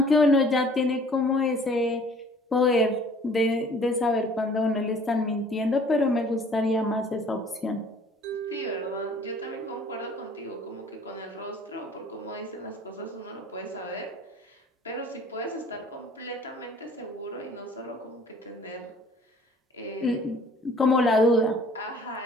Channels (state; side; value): normal; both; correlation 0.53